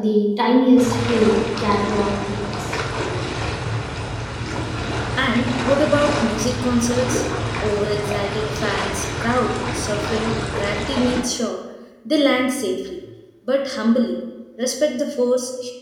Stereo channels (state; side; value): identical; both; correlation 1.00